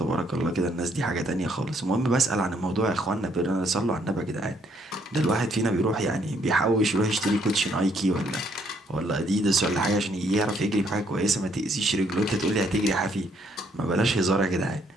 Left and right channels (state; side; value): normal; both; correlation 0.69